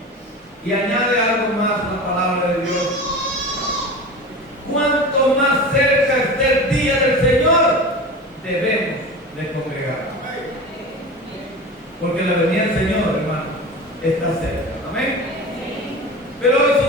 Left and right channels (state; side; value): normal; both; correlation 0.31